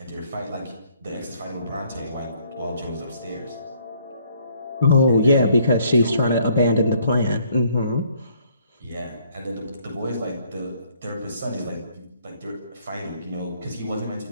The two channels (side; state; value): both; inverted; correlation -0.64